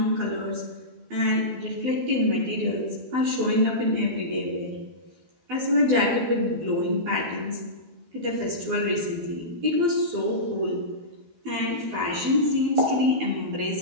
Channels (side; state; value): left; late; 12 ms